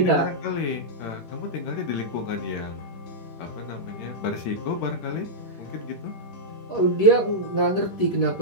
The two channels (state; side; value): late; right; 11 ms